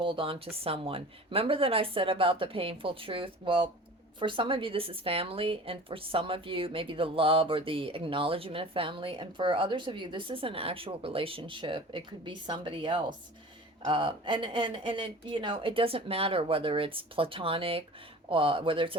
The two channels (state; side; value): normal; both; correlation 0.40